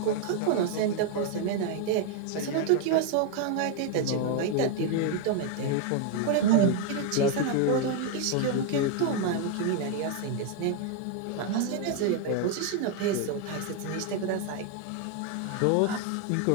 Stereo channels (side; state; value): both; different; correlation 0.01